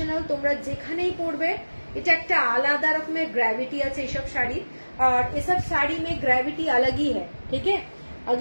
তোমরা যেখানেই পরবে এটা একটা আলাদা রকমের গ্র্যাভিটি আছে এইসব শাড়ি। और ये सब साड़ी में ग्रेविटी अलग ही है, ठीक है।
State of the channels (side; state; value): both; inverted; correlation -1.00